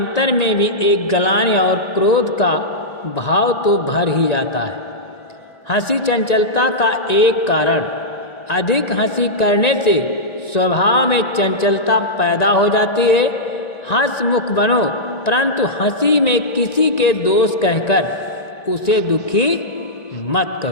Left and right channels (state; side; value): late; right; 1.9 ms